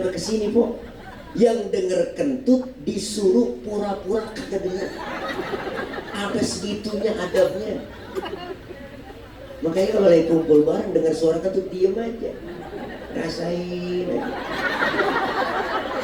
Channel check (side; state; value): both; identical; correlation 1.00